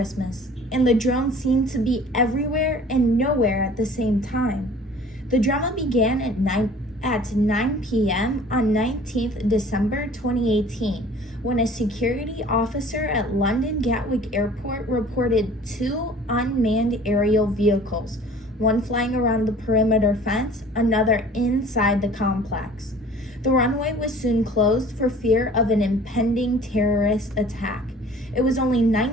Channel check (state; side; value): normal; both; correlation 0.48